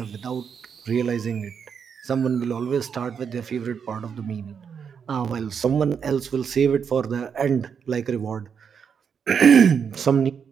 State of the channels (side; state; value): left; quieter; 6.9 dB